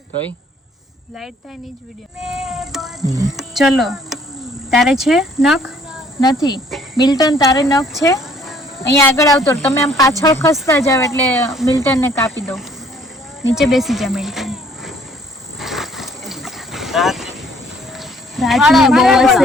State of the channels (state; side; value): normal; both; correlation 0.60